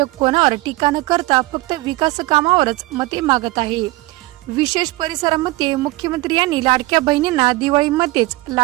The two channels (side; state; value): left; quieter; 20.4 dB